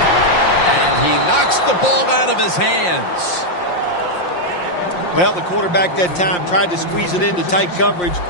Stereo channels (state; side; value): late; right; 5.7 ms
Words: And he knocks the ball out of his hands. Well, the quarterback that time tried to squeeze it into tight coverage,